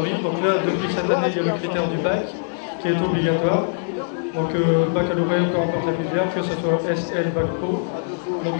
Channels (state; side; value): silent; right; digital silence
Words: Donc là, depuis cette année, il y a le critère du bac qui est obligatoire. Donc baccalauréat, peu importe la filière, que ce soit SL, bac pro.